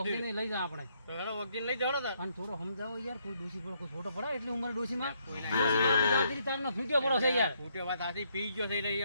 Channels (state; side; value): inverted; both; correlation -0.72